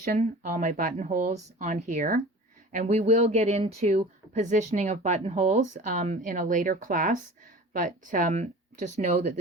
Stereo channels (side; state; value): both; normal; correlation 0.40